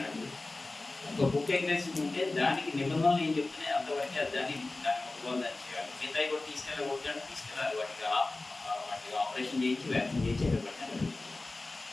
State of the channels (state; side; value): quieter; right; 3.1 dB